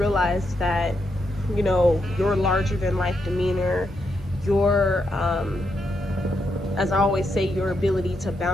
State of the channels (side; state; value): both; normal; correlation 0.81